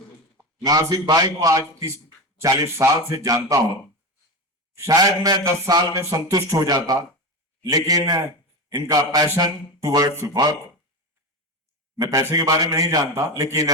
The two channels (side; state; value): both; normal; correlation 0.20